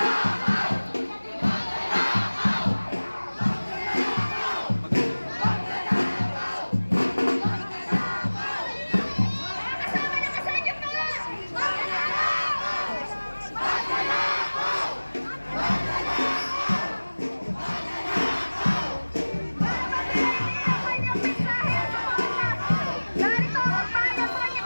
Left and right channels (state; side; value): inverted; both; correlation -1.00